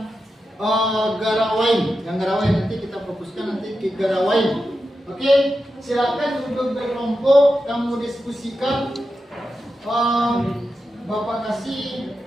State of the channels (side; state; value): both; normal; correlation 0.90